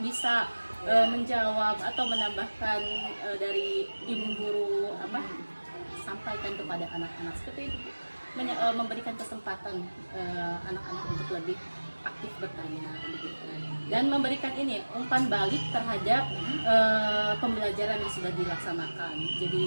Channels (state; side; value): inverted; both; correlation -1.00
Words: bisa menjawab atau menambahkan dari ibu guru sampaikan kepada anak-anak seperti itu. Memberikan kesempatan anak-anak untuk lebih aktif bertanya begitu. Dan memberikan umpan balik terhadap pembelajaran yang sudah dilaksanakan.